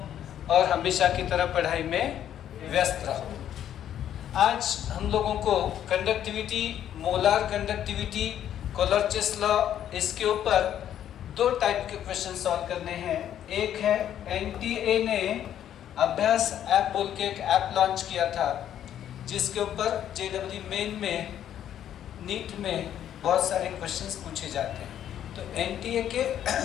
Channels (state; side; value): quieter; right; 10.5 dB